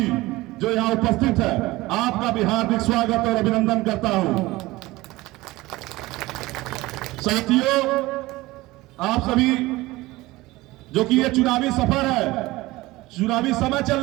जो यहाँ उपस्थित है आपका भी हार्दिक स्वागत और अभिनंदन करता हूं। साथियों, आप सभी जो कि ये चुनावी सफर है, चुनावी समय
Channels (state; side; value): quieter; left; 19.5 dB